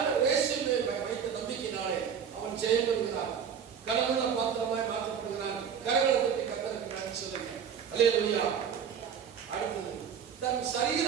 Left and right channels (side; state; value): left; quieter; 7.5 dB